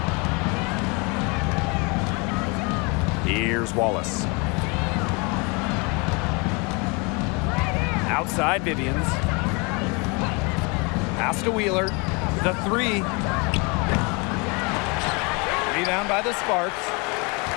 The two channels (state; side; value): quieter; right; 30.1 dB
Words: Here's Wallace. Outside Vivians. Pass to Wheeler. The three. Rebound by the Sparks.